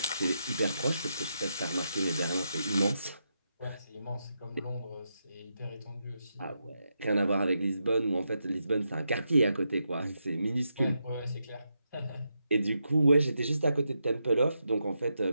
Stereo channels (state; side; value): inverted; both; correlation -0.84